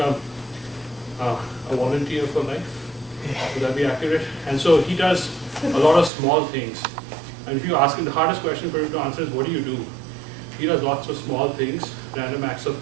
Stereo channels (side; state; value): left; drops out; at 6.1 s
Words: a volunteer for life. Would that be accurate? And so he does a lot of small things. And if you ask him, the hardest question for him to answer is, what do you do? He does lots of small things, random acts of